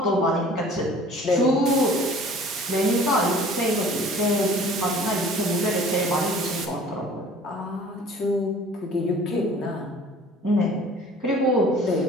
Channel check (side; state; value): both; normal; correlation 0.48